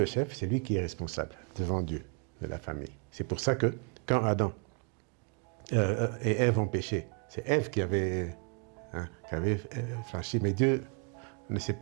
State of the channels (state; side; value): quieter; left; 37.0 dB